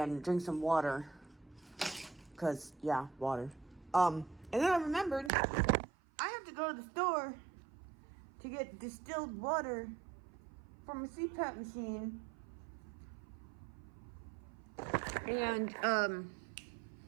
drink some water. Cause, yeah, water. And then I remembered I have to go to the store to get distilled water from a CPAP machine. And,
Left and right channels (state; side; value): drops out; left; at 5.3 s